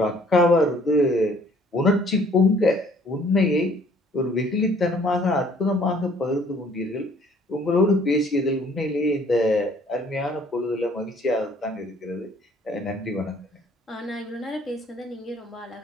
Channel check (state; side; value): normal; both; correlation 0.58